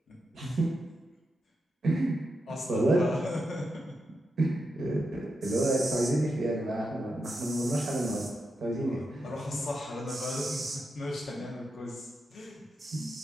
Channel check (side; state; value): both; normal; correlation 0.86